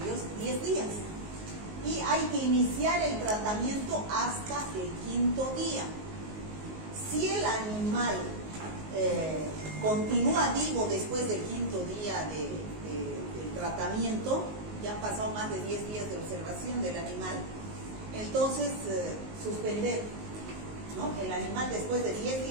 10 días. Y hay que iniciar el tratamiento hasta el 5º día. Si el animal continúa vivo después del 5º día del tratamiento, ya han pasado más de 10 días de observación del animal, entonces suspender, ¿no? El animal después de 10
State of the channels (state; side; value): late; left; 19 ms